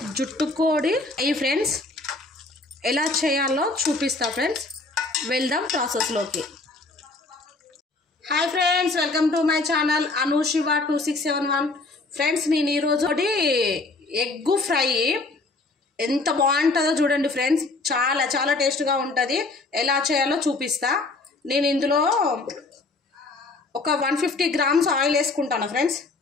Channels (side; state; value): right; quieter; 3.4 dB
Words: జుట్టుకోడి ఈ friends ఎలా చేయాలో చూపిస్తా ఫ్రెండ్స్. వెళ్దాం ప్రాసెస్లోకి. Hi friends, welcome to my channel Anushiva 2671. Friends నేను ఈరోజు ఎగ్ ఫ్రై ఎంత బాగుంటుందో చూడండి ఫ్రెండ్స్. చాలా చాలా టేస్ట్గా ఉంటుంది. ఎలా చేయాలో చూపిస్తా. నేను ఇందులో ఒక 150 గ్రామ్స్ ఆయిల్ వేసుకుంటాను ఫ్రెండ్స్.